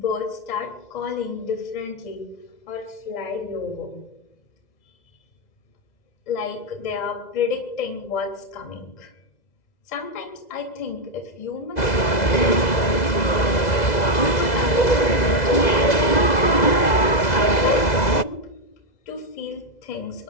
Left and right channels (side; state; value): right; late; 2.0 ms